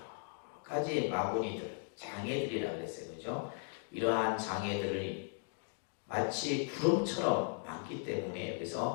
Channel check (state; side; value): silent; right; 53 dB below the other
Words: 가지 마구니들, 장애들이라고 그랬어요. 그죠? 이러한 장애들이 마치 구름처럼 많기 때문에